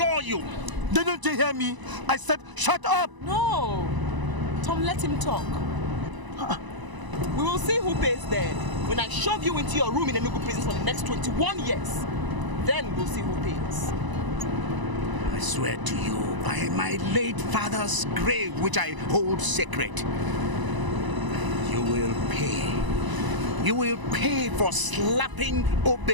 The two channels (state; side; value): late; left; 1.0 ms